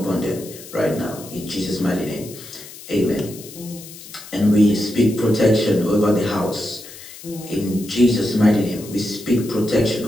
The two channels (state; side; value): noise; left; hiss, 16 dB below the sound